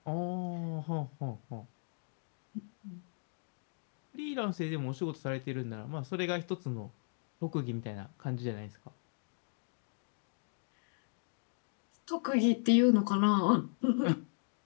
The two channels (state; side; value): silent; right; digital silence